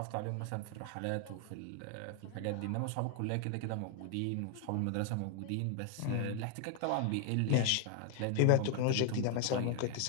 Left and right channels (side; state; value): both; different; correlation 0.00